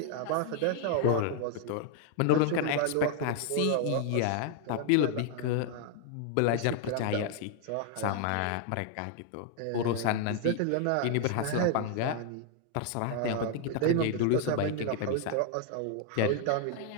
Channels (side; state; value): both; different; correlation 0.00